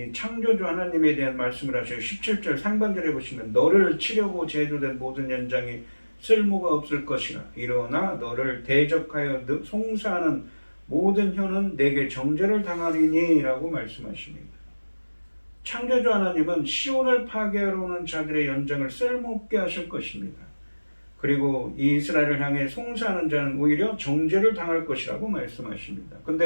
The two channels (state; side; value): inverted; both; correlation -1.00